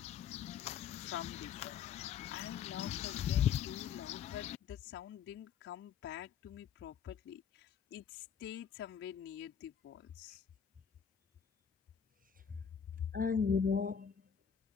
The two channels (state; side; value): quieter; right; 7.7 dB